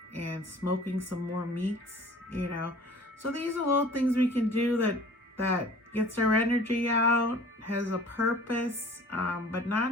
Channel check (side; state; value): both; normal; correlation 0.47